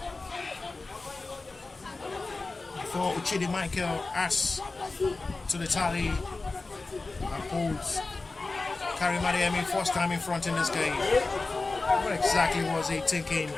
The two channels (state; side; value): quieter; right; 3.6 dB